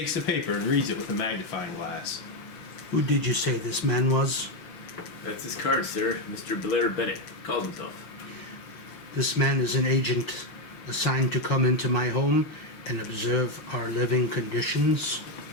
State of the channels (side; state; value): right; late; 5.7 ms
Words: the paper and reads it with a magnifying glass. Who did you say this man was? That's his card, sir. Mr. Blair Bennett calls himself. This man is an agent assigned to come into my home and observe our living conditions.